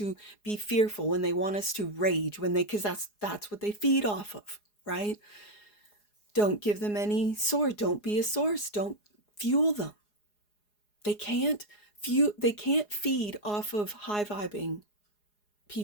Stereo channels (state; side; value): late; right; 4.8 ms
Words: be fearful, when they want us to rage, because that's what they feed off of, right? Don't give them any source. Don't be a source. Don't fuel them. They can't feed off of high vibing